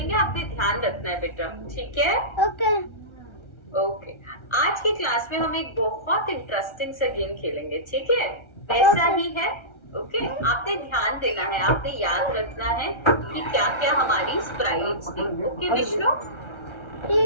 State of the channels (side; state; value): right; late; 1.3 ms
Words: आपने ध्यान रखना है बेटा, ठीक है? ओके, आज की क्लास में हम एक बहुत इंटरेस्टिंग सा गेम खेलेंगे, ठीक है? वैसा ही है, ओके? आपने ध्यान देना है, आपने याद रखना है कि क्या क्या हमारी स्प्राइट्स थी, ओके विष्णु?